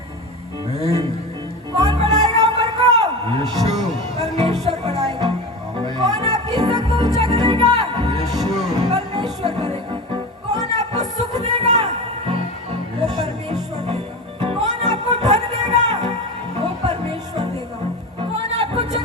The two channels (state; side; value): normal; both; correlation 0.26